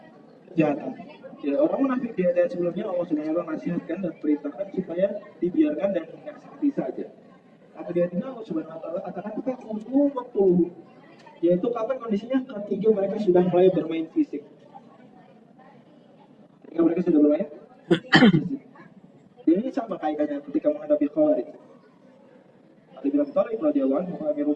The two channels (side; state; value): both; identical; correlation 1.00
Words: kejahatan. Ya, orang munafik di ayat sebelumnya Allah SWT nasihatkan dan perintahkan supaya dibiarkan dan menasihati saja. Tapi di ayat ini Allah SWT katakan faqulu maqtuluhum, yaitu kapan kondisinya? Ketika mereka sudah mulai bermain fisik. Ketika mereka sudah bermain fisik. Ini sama kaidahnya ketika menghadapi Khawarij. Ali bin Abi Thalib radhiyallahu anhu Amirul